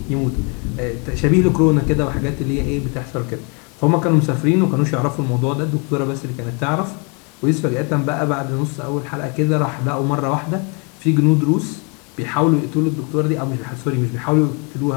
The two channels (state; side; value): quieter; right; 34.3 dB